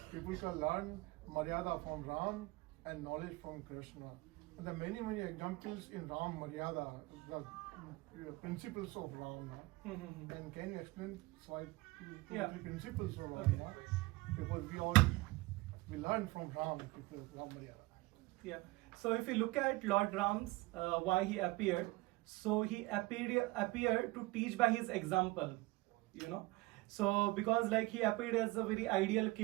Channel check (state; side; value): quieter; left; 22.1 dB